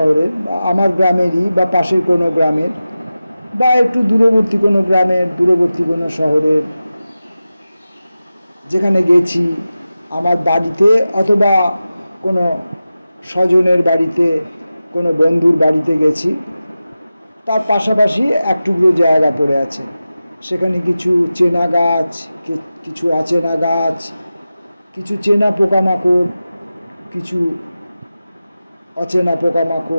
বা আমার গ্রামেরই বা পাশের কোনো গ্রামের বা একটু দূরবর্তী কোনো গ্রামের, দূরবর্তী কোনো শহরের যেখানে গেছি, আমার বাড়িতে অথবা কোনো স্বজনের বাড়িতে, কোনো বন্ধুর বাড়িতে গেছি, তার পাশাপাশি এক টুকরো জায়গা পড়ে আছে, সেখানে কিছু চেনা গাছ, কিছু অচেনা গাছ, কিছু চেনা পোকামাকড়, কিছু অচেনা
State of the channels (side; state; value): both; inverted; correlation -0.94